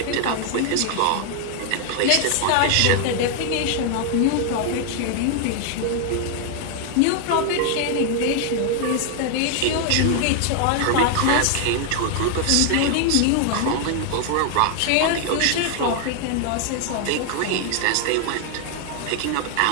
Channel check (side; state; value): both; different; correlation 0.00